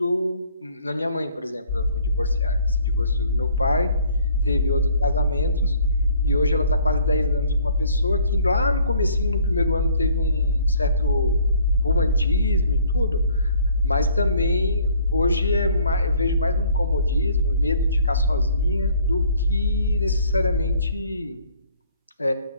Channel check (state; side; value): inverted; both; correlation -0.59